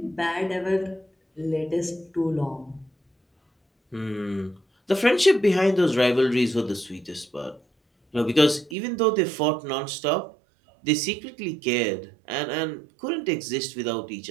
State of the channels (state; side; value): drops out; left; at 8.8 s